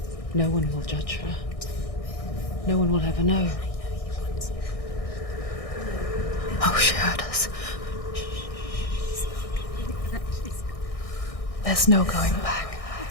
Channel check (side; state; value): right; late; 1.6 ms